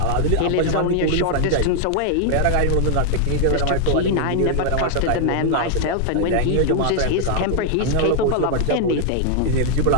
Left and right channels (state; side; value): different; both; correlation 0.00